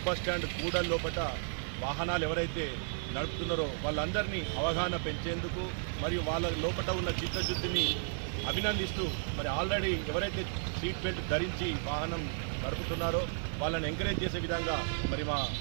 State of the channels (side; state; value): left; silent; 55 dB below the other